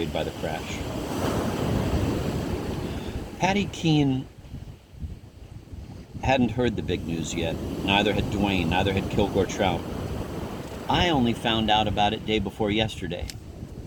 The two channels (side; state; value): both; identical; correlation 1.00